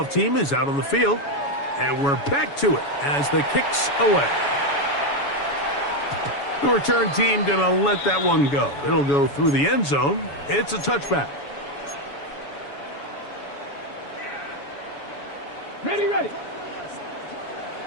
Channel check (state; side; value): late; right; 7.1 ms